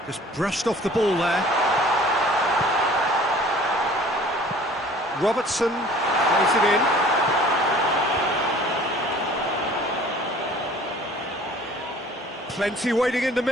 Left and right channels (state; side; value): normal; both; correlation 0.50